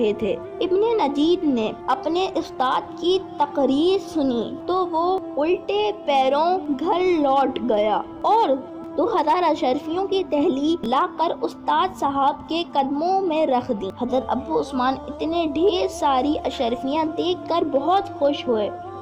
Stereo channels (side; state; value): both; identical; correlation 1.00